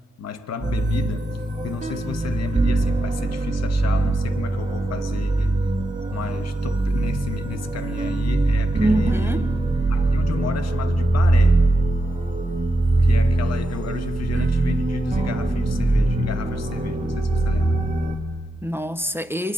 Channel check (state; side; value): normal; both; correlation 0.86